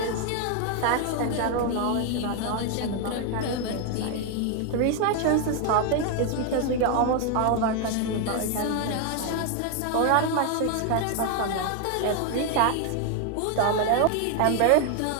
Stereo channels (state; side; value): different; both; correlation 0.01